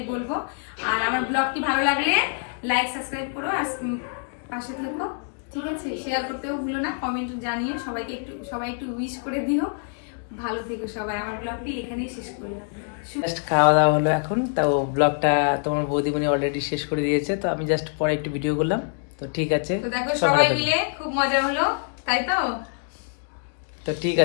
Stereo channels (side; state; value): right; silent; 58 dB below the other